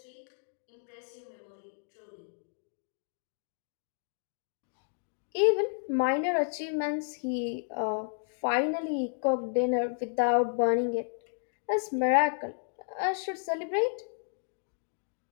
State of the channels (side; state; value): right; silent; digital silence